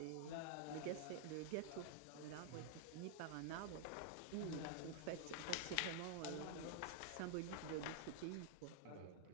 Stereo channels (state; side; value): different; both; correlation -0.01